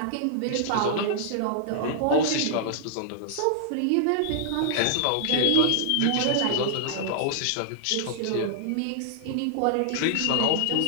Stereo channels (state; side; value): different; both; correlation -0.01